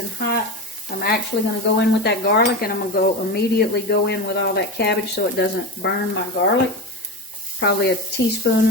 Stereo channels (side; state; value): both; normal; correlation 0.23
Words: hot. I'm actually going to go in with that garlic, and I'm going to immediately go in with all that cabbage so it doesn't burn my garlic. Probably a